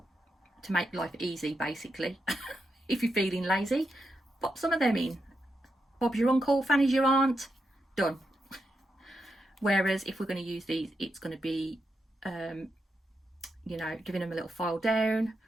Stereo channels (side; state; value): both; normal; correlation 0.85